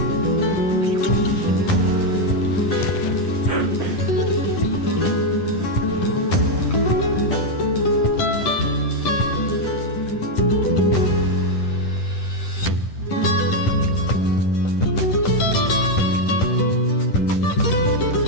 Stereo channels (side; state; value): right; late; 10 ms